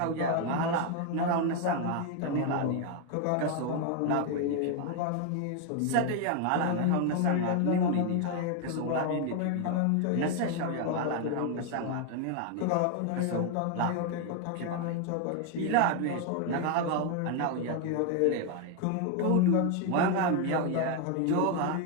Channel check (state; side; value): different; both; correlation 0.01